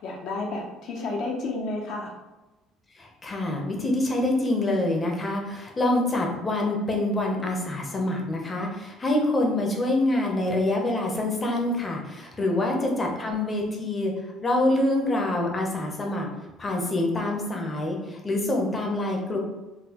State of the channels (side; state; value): both; normal; correlation 0.65